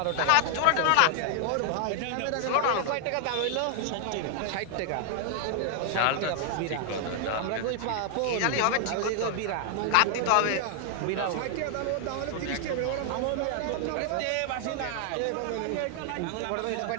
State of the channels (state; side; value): different; both; correlation 0.00